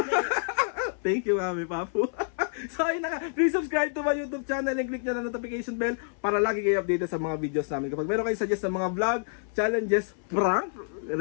Thank you, Mami Papu. So, ayun na nga. Please subscribe to my YouTube channel and click nyo na notification bell para lagi kayo updated sa mga videos namin. Kapag meron kayo suggest ng mga vlog, challenges, prank,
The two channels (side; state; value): right; silent; 58 dB below the other